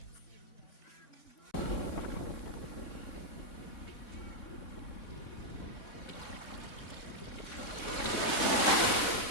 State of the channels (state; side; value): late; right; 3.6 ms